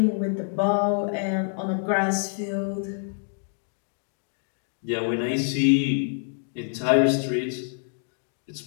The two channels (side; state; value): right; silent; 59 dB below the other